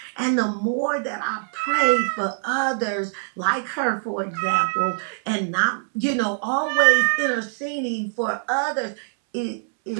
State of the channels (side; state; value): left; silent; 63 dB below the other